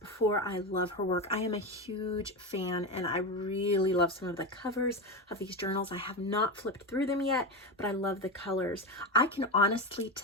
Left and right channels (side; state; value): both; normal; correlation 0.17